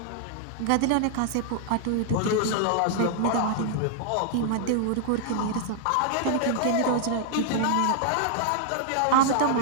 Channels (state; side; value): different; both; correlation 0.00